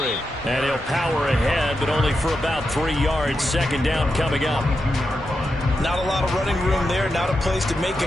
And he'll power ahead, but only for about 3 yards. Second down coming up. Not a lot of running room there. Not a place to make a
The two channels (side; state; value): both; normal; correlation 0.87